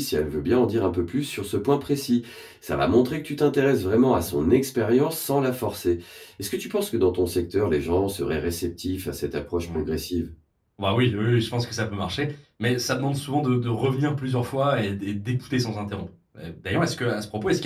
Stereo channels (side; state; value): both; identical; correlation 1.00